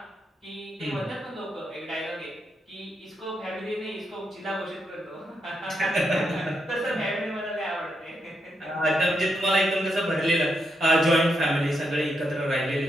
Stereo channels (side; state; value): both; normal; correlation 0.82